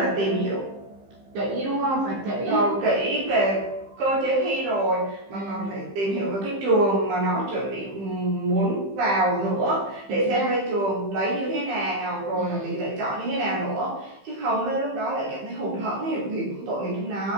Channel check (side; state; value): left; late; 15 ms